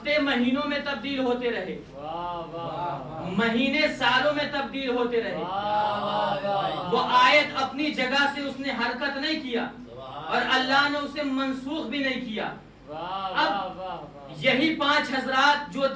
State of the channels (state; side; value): identical; both; correlation 1.00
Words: مہینوں میں تبدیل ہوتے رہے، مہینے سالوں میں تبدیل ہوتے رہے۔ وہ آیت اپنی جگہ سے اس نے حرکت نہیں کیا اور اللہ نے اسے منسوخ بھی نہیں کیا۔ اب یہی 5 حضرات جو